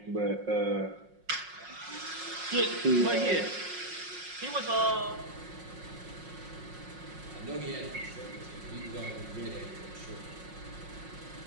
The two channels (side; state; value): left; late; 5.5 ms